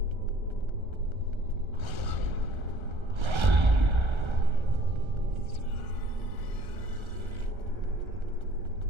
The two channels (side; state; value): left; late; 1.3 ms